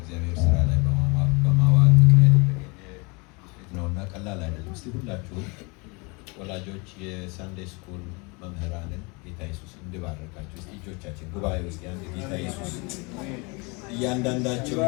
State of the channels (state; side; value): quieter; right; 29.2 dB